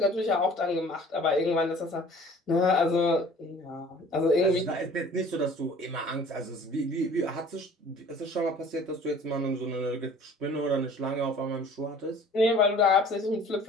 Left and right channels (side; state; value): both; normal; correlation 0.49